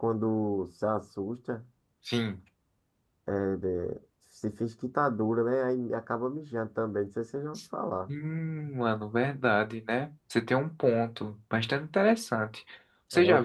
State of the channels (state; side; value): identical; both; correlation 1.00